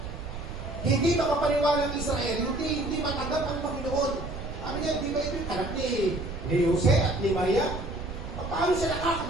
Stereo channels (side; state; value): right; noise; rumble, 9 dB below the sound